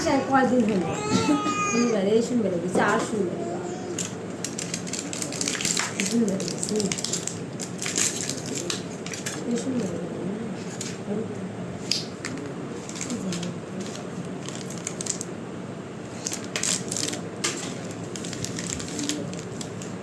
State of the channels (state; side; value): identical; both; correlation 1.00